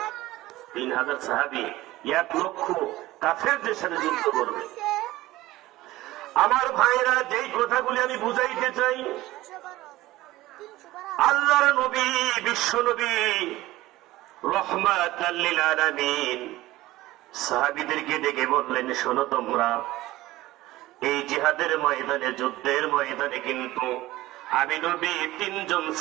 সাহাবী 1 লক্ষ কাফেরদের সাথে যুদ্ধ করবে। আমার ভাইরা, যেই কথাগুলি আমি বুঝাইতে চাই, আল্লাহর নবী বিশ্ব নবী রহমাতুল লিল আলামিন সাহাবীদেরকে ডেকে বললেন, শোনো তোমরা, এই জিহাদের ময়দানে, যুদ্ধের ময়দানে কিন্তু আমি নবী 3 জন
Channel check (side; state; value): left; quieter; 17.3 dB